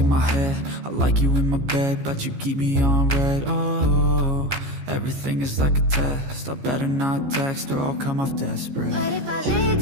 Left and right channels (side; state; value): left; late; 15 ms